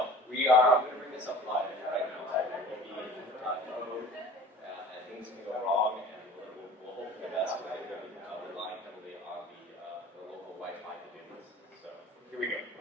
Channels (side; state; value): both; normal; correlation 0.42